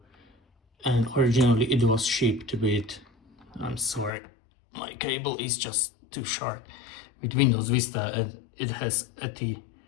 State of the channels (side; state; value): right; drops out; at 4.1 s